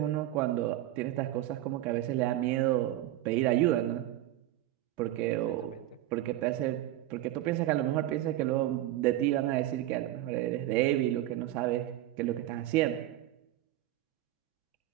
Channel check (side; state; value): left; quieter; 14.3 dB